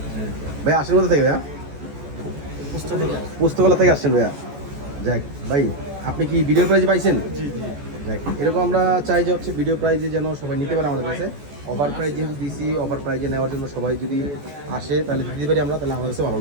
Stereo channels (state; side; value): late; left; 14 ms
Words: ভাই আসেন কোথা থেকে ভাইয়া? পুস্তকলা থেকে আসছেন ভাইয়া। যাক ভাই আপনি কি ভিডিও প্রাইজ পাইছেন? যাক এরকম আমরা চাই যে হচ্ছে ভিডিও প্রাইজে যেন সবাই নিতে পারে আমাদের কাছে। অফার প্রাইজ যেহেতু দিছি, অফার প্রাইজে নেওয়ার জন্য সবাই যদি আসে তাহলে দিতে পারি আমরা, তাহলে আমাদের কাছে ভালো